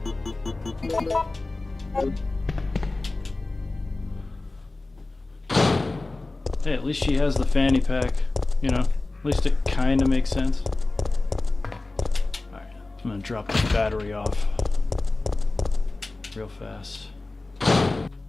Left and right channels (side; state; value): right; quieter; 3.2 dB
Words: Hey, at least she has the fanny pack, you know, at least it kind of makes sense. Alright, I'm gonna drop this battery off real fast.